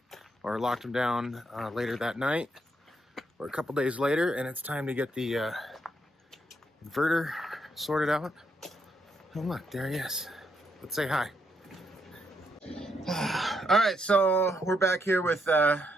or locked them down later that night or a couple days later, and it's time to get the inverter sorted out. Oh look, there he is. Let's say hi. All right, so we're back here with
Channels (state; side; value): normal; both; correlation 0.77